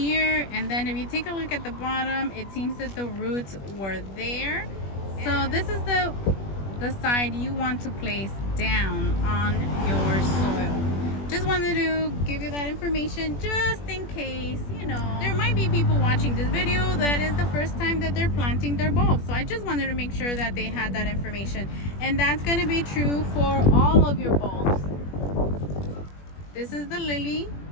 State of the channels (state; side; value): late; right; 21 ms